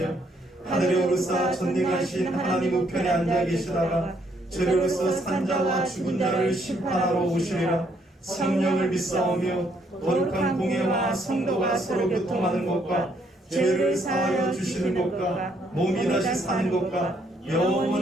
하늘에 오르사 전능하신 하나님 우편에 앉아 계시다가 죄로서 산자와 죽은 자를 심판하러 오시리라. 성령을 믿사오며 거룩한 공예와 성도가 서로 교통하는 것과 죄를 사하여 주시는 것과 몸이 다시 사는 것과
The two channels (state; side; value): normal; both; correlation 0.70